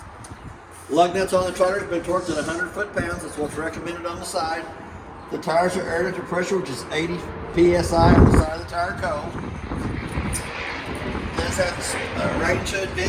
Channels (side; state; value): both; identical; correlation 1.00